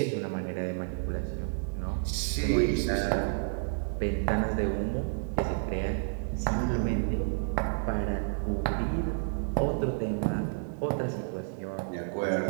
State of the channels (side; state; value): left; silent; digital silence